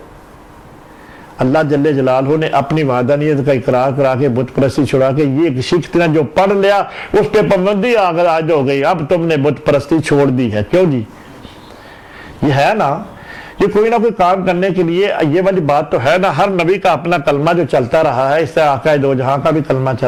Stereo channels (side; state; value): both; identical; correlation 1.00